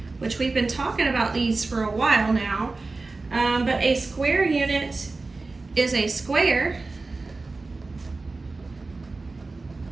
which we've been talking about these for a while now, but a square unit is a square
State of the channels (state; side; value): quieter; left; 3.6 dB